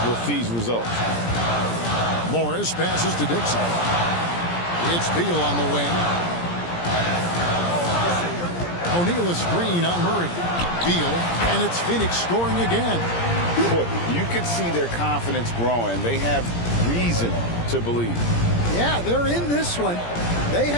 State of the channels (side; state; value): right; late; 17 ms